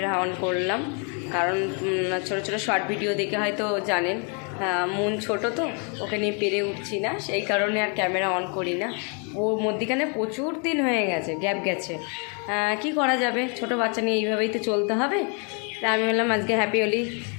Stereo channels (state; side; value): quieter; right; 37.8 dB